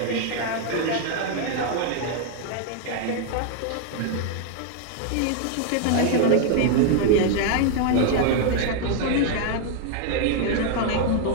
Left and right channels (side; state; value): both; different; correlation 0.00